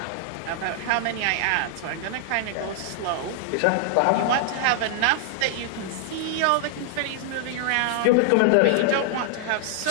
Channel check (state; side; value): different; both; correlation 0.00